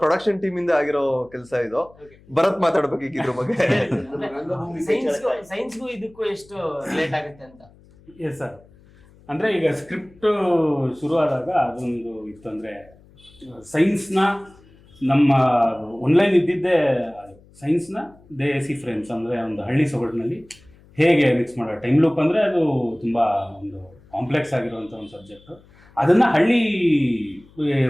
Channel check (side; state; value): left; noise; hum, 27 dB below the sound